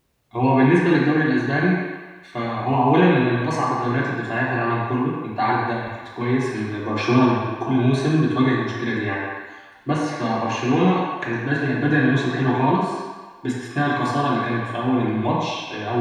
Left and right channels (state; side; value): identical; both; correlation 1.00